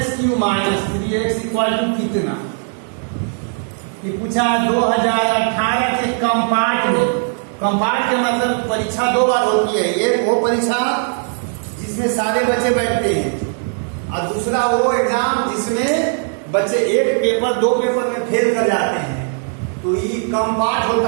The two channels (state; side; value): silent; left; 55 dB below the other